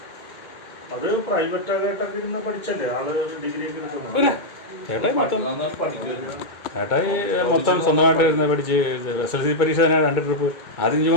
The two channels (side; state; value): right; late; 2.3 ms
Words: അത് പ്രൈവറ്റ് ആയിട്ടൊക്കെ ഇരുന്ന് പഠിച്ചല്ലേ ആള് ഡിഗ്രി ഒക്കെ എടുക്കുന്നത്. ചേട്ടായി മൊത്തം സ്വന്തമായിട്ട് ഇരുന്ന് പഠിച്ച് SLC പരീക്ഷ തന്നെ 2 ട്രിപ്പ് ആദ്യം